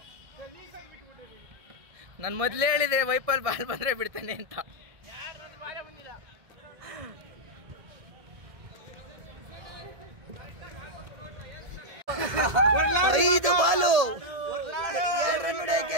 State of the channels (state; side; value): late; left; 1.7 ms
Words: ನಾನು ಮೊದಲೇ ಹೇಳಿದೆ ವೈಪಲ್ ಬಾಲ್ ಬಂದ್ರೆ ಬಿಡ್ತಾನೆ ಅಂತ. 5 ಬಾಲು 2 ರನ್